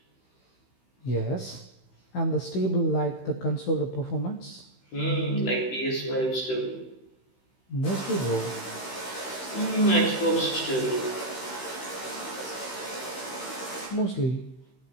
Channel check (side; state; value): right; late; 16 ms